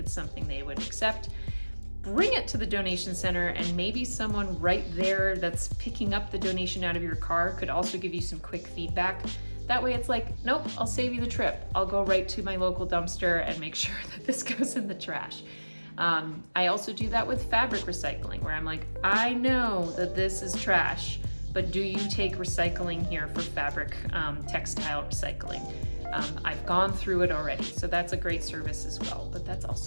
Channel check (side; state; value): both; inverted; correlation -1.00